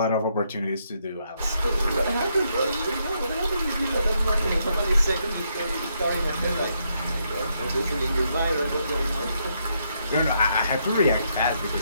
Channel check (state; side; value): inverted; both; correlation -0.77